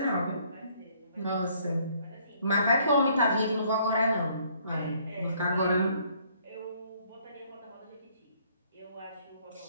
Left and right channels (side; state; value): both; inverted; correlation -0.64